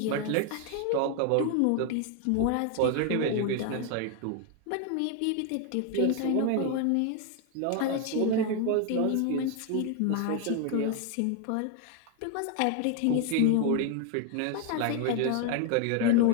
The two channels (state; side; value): different; both; correlation 0.01